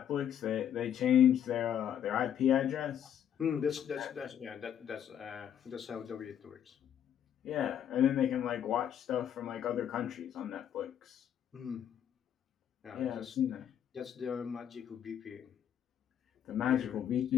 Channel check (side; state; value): right; quieter; 9.5 dB